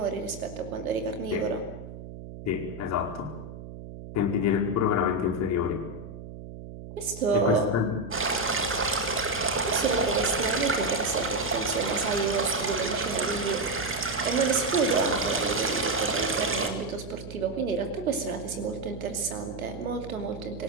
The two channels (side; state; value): right; noise; hum, 12 dB below the sound